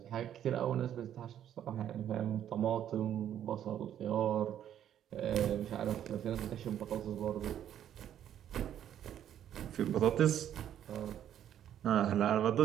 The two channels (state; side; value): quieter; left; 10.5 dB